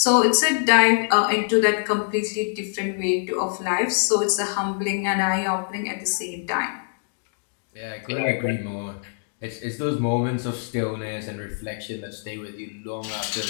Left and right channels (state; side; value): silent; right; digital silence